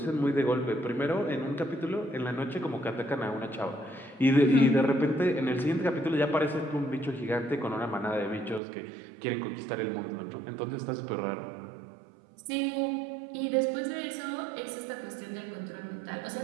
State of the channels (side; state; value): left; drops out; at 8.6 s